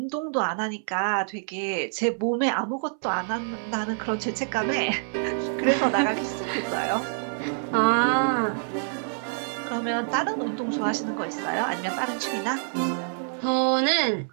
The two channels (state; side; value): silent; left; 61 dB below the other